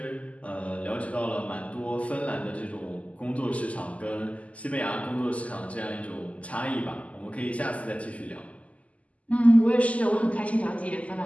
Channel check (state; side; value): late; right; 0.068 ms